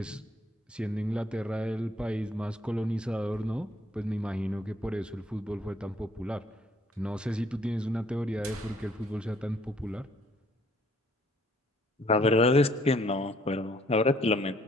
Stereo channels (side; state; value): both; normal; correlation 0.63